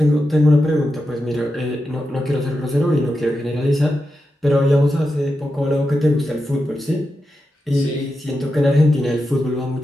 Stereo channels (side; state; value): both; normal; correlation 0.89